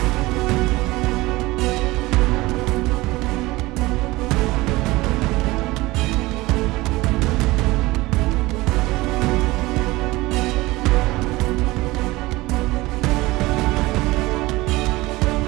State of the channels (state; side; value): quieter; left; 20.3 dB